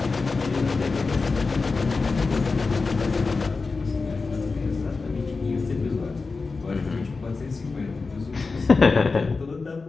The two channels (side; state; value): right; quieter; 4.2 dB